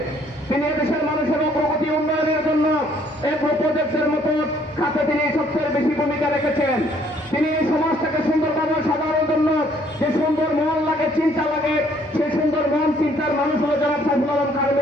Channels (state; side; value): normal; both; correlation 0.63